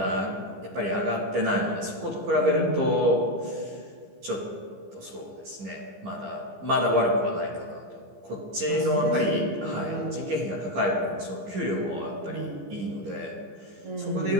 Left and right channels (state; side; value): late; left; 15 ms